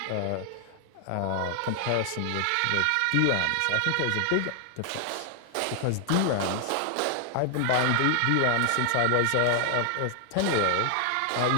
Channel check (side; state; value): both; different; correlation 0.00